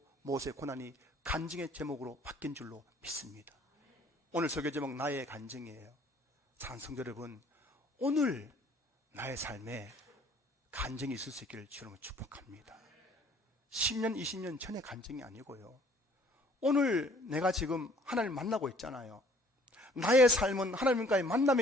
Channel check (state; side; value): normal; both; correlation 0.57